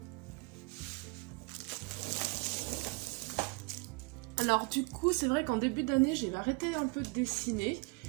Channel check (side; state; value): left; quieter; 30.9 dB